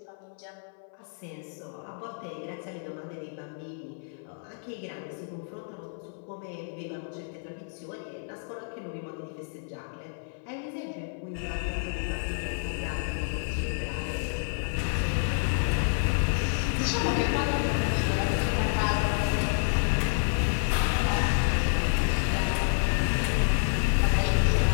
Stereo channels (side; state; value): right; silent; 57 dB below the other